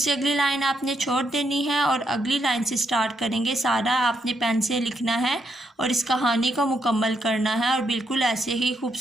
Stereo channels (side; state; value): both; normal; correlation 0.78